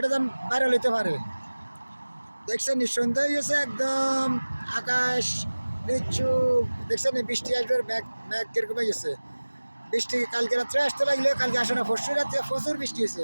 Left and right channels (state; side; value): inverted; both; correlation -1.00